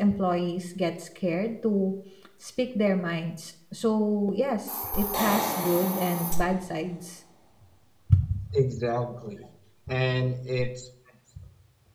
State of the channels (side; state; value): both; identical; correlation 1.00